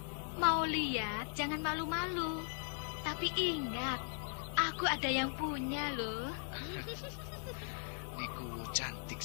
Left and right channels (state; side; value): silent; right; digital silence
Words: Mau lihat, jangan malu-malu. Tapi ingat, aku ada yang punya loh. Nikuwu cantik